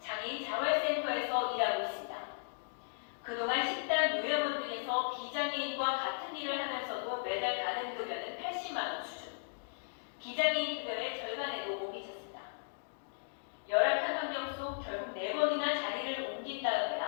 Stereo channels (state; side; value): silent; right; digital silence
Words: 자활센터에서 일하고 있습니다. 그동안 식당, 요양원 등에서 비장애인과 같은 일을 하면서도 매달 받은 급여는 80만 원 수준. 비장애인 급여의 절반에도 못 미쳤습니다. 열악한 환경 속 결국 4번이나 자리를 옮긴